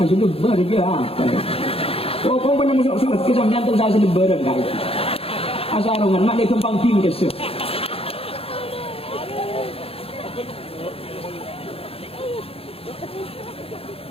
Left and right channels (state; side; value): late; right; 0.28 ms